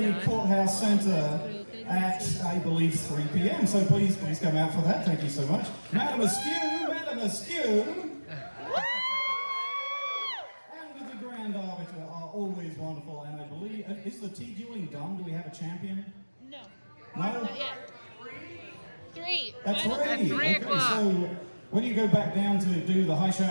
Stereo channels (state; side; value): inverted; both; correlation -1.00